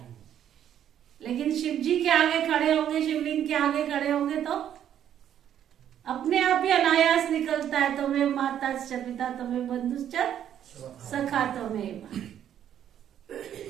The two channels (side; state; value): left; quieter; 10.1 dB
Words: लेकिन शिव जी के आगे खड़े होंगे, शिवलिंग के आगे खड़े होंगे तो अपने आप ही अनायास निकलता है, तुम्हें माता से पिता, तुम्हें बंधुश्च सखा तुम्हें।